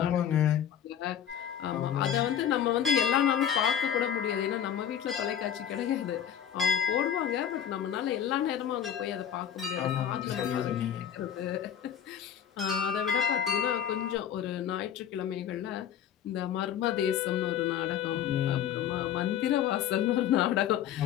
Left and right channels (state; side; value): quieter; right; 9.5 dB